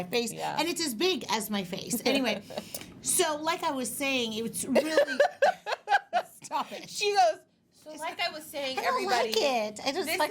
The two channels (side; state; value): both; identical; correlation 1.00